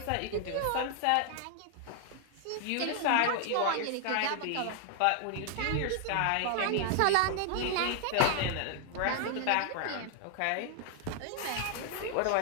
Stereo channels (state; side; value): different; both; correlation 0.00